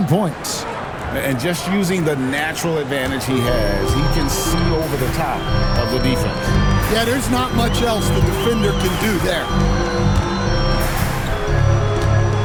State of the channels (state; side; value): identical; both; correlation 1.00